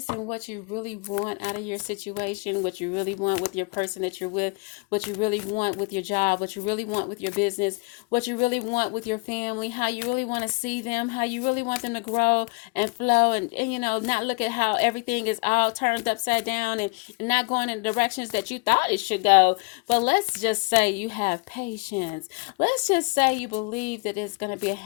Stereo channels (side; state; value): right; quieter; 31.5 dB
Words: in what you really want out of your situation, what you really want with your person that you're with, what you really want with your job, what you really want with your business, what you really want with your family, how you really want to see them, how you really want them to grow and flow and not look at how everything is all turned upside down and not going in the directions that you thought it should go. But let's just say you have patience. Let's just say you believe that it's going to be a